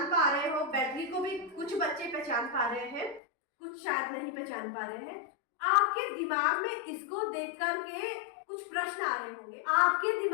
पा रहे हो? बैटरी को भी कुछ बच्चे पहचान पा रहे हैं, कुछ शायद नहीं पहचान पा रहे हैं। आपके दिमाग में इसको देख करके कुछ प्रश्न आ रहे होंगे। आपके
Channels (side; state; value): right; drops out; at 3.2 s